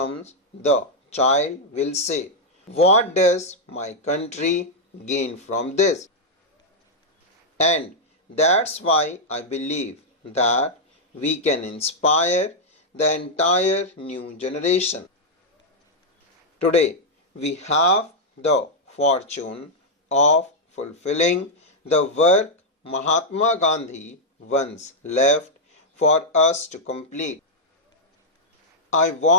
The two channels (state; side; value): normal; both; correlation -0.03